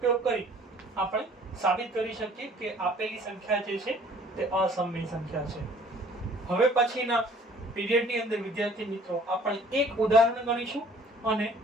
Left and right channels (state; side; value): normal; both; correlation 0.54